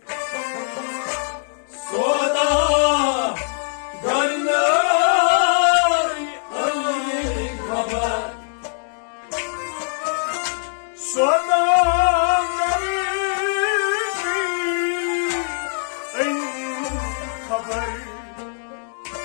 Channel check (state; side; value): silent; right; digital silence